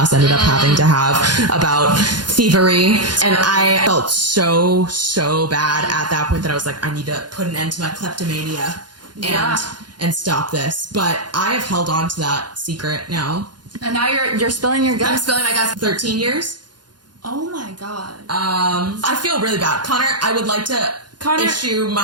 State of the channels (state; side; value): late; left; 0.70 ms